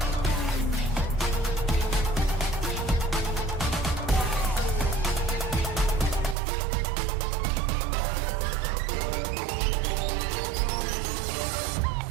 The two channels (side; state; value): left; drops out; at 6.4 s